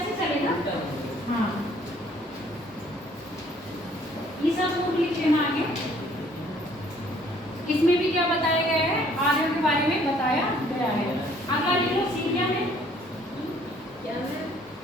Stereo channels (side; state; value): both; normal; correlation 0.60